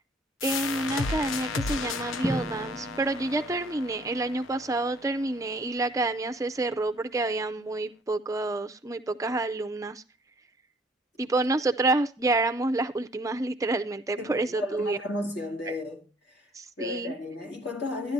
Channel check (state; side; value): normal; both; correlation 0.59